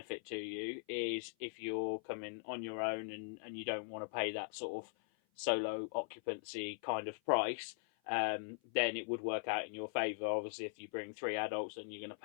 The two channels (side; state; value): right; silent; 51 dB below the other